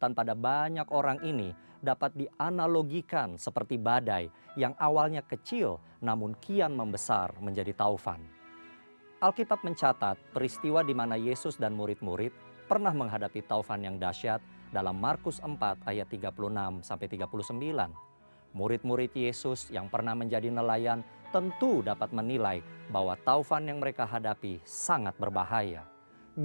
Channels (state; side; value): inverted; both; correlation -1.00